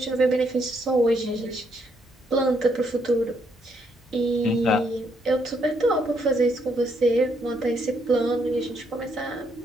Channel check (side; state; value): both; normal; correlation 0.74